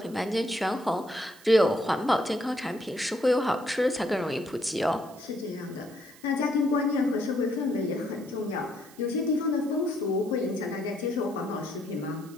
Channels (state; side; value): noise; right; hiss, 23 dB below the sound